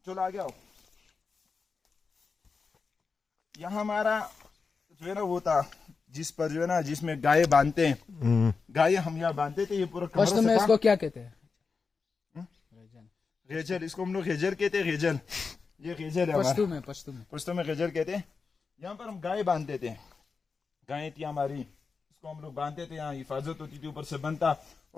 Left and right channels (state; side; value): quieter; right; 4.9 dB